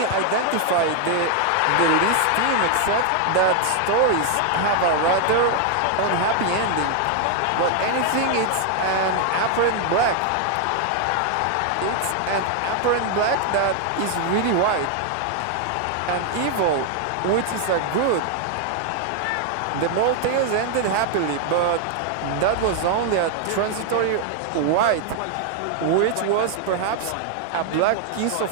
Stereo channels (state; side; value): different; both; correlation 0.00